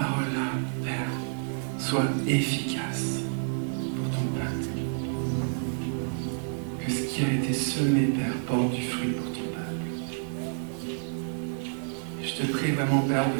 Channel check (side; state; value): left; silent; digital silence